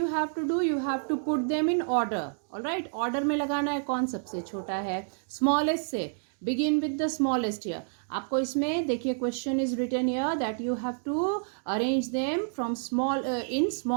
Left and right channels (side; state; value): left; silent; digital silence